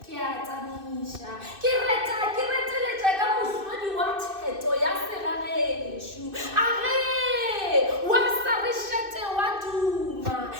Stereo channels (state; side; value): late; left; 2.6 ms